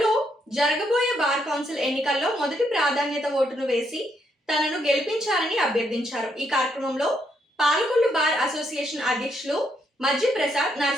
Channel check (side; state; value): both; normal; correlation 0.76